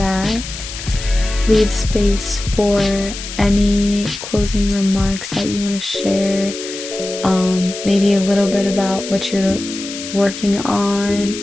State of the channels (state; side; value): noise; left; hiss, 10 dB below the sound